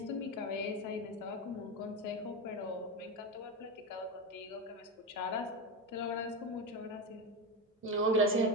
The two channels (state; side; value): normal; both; correlation 0.16